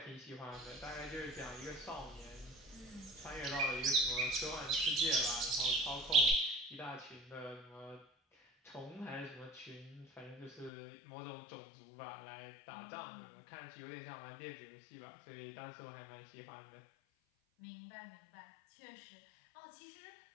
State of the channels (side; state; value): right; drops out; at 10.7 s